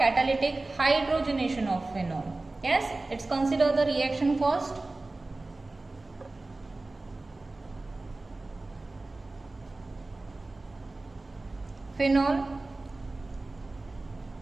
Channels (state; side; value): quieter; left; 3.1 dB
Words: hydrogenation of phenol. Yes, let's consider the reaction first. Phenol